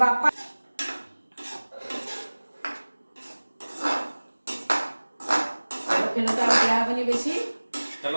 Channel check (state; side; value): inverted; both; correlation -1.00